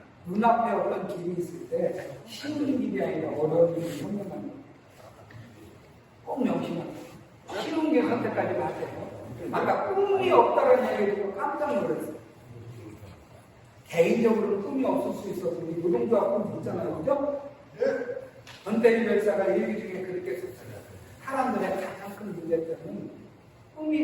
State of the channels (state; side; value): identical; both; correlation 1.00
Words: 눈앞에 어떤 길이 있을 때 쉬운 길이 아니라 어려운 길이 현명한 거예요. 꼭 명심하세요. 쉬운 게 선택하지 마세요. 아까 꿈이 없다는 얘기 듣고 깜짝 놀랐어요. 개인적으로 꿈이 없을 수 있어서 우리 노동조합 꿈 있잖아요. 그죠? 전태일 열사가 일기 중에 그렇게 썼어요. 사람들의 가장 큰 문제점은 꿈이